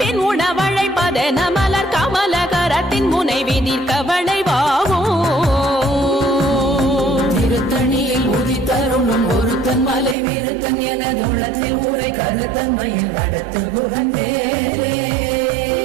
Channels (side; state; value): left; drops out; at 10.2 s